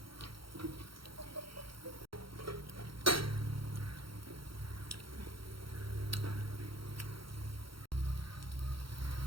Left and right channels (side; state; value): left; late; 0.74 ms